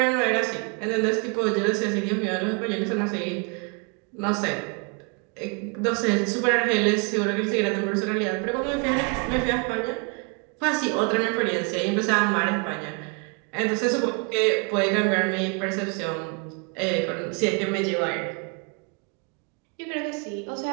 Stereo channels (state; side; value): quieter; left; 34.0 dB